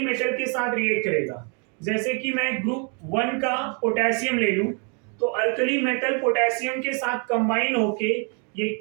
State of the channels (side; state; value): left; quieter; 37.5 dB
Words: के साथ रिएक्ट करेगा, जैसे कि मैं ग्रुप 1 का पोटेशियम ले लूं, तो अल्कली मेटल पोटेशियम के साथ कंबाइन होके ये